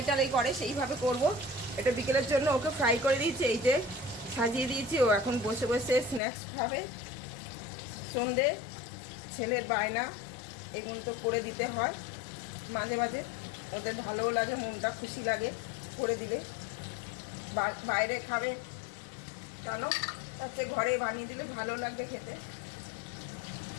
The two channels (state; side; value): drops out; right; at 6.2 s